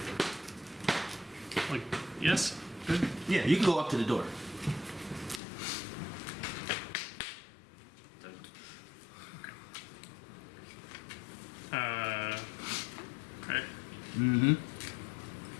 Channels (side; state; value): right; drops out; at 5.4 s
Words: Like, yes? Good. Yeah, you can go up to the door. Okay. Mm-hmm.